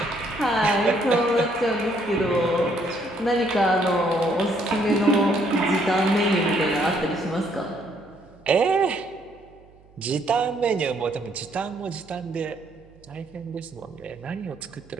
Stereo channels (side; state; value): right; noise; hum, 27 dB below the sound